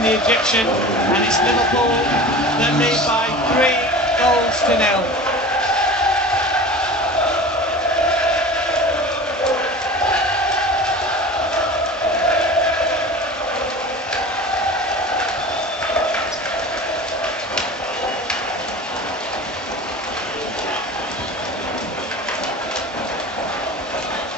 the Egyptian, and it's Liverpool that lead by 3-0.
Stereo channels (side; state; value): both; normal; correlation 0.36